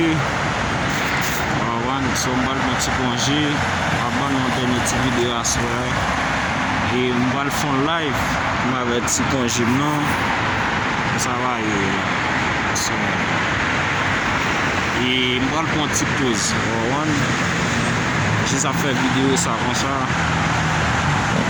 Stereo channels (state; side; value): identical; both; correlation 1.00